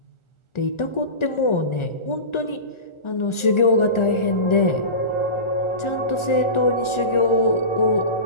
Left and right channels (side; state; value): right; late; 1.4 ms